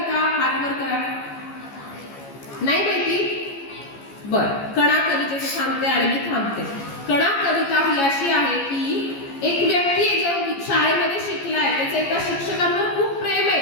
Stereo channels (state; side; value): late; right; 15 ms